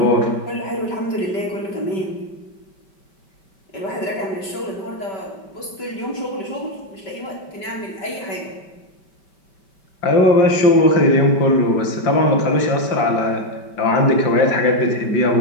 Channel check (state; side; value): late; right; 5.2 ms